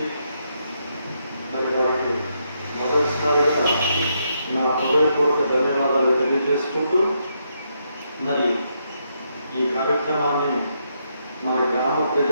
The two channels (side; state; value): both; inverted; correlation -0.78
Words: మరి వారికి మొదటిసారిగా నా హృదయపూర్వక ధన్యవాదాలు తెలియజేసుకుంటూ మరి ఈ కార్యక్రమాన్ని మన గ్రామ